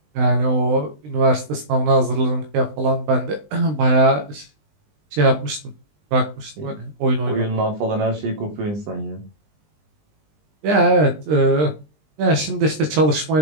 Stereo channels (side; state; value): left; late; 20 ms